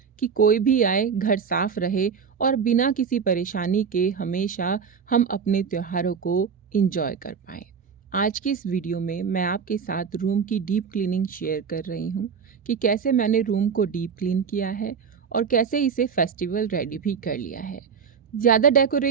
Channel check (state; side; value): quieter; left; 6.4 dB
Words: कि कोई भी आए घर साफ रहे और बिना किसी परेशानी के हमेशा हम अपने त्योहारों को एंजॉय कर पाएं। आज की इस वीडियो में मैं आपके साथ रूम की डीप क्लीनिंग शेयर कर रही हूँ कि कैसे मैंने रूम को डीप क्लीन किया है और कैसे इसे फेस्टिवल रेडी भी कर लिया है। ज़्यादा